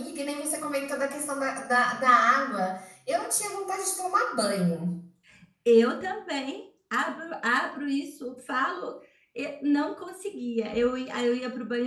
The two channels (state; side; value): identical; both; correlation 1.00